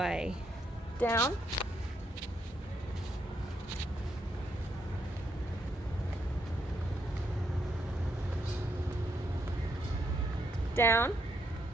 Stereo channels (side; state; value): both; normal; correlation 0.77